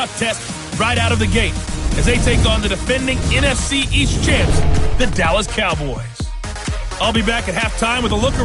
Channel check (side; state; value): both; identical; correlation 1.00